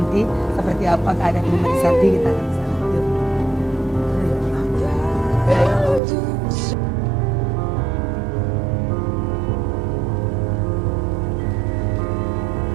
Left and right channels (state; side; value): drops out; left; at 6.0 s